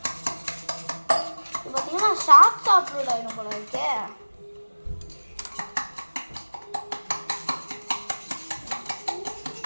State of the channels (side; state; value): both; inverted; correlation -1.00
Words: இப்போ பார்த்தீங்கன்னா ஷார்ட்ஸ் அப்லோட் ஆகிடும் போல இருக்கே.